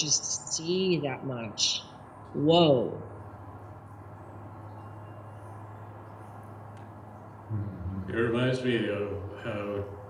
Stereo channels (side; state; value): both; identical; correlation 1.00